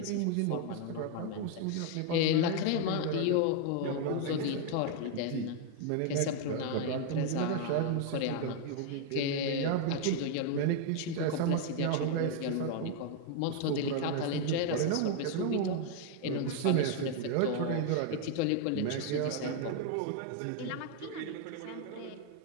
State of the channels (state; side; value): different; both; correlation 0.00